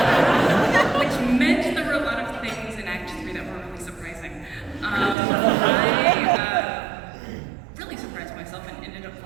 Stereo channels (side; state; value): left; drops out; at 5.2 s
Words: which meant there were a lot of things in Act 3 that were really surprising. I really surprised myself and ended up